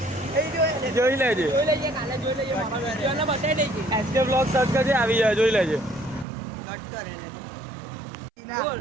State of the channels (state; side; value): drops out; left; at 6.2 s